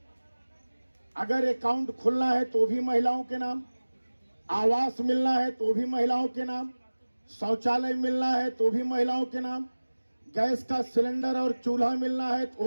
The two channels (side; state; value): both; inverted; correlation -1.00